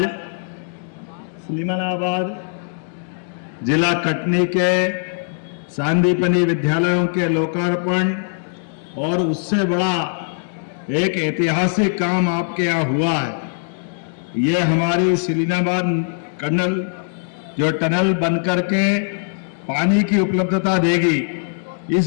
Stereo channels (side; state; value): right; silent; digital silence